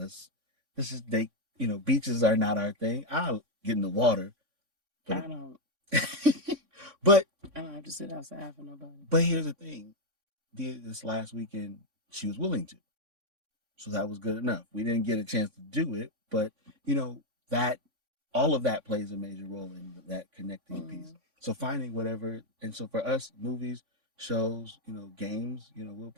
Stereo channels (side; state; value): left; late; 3.6 ms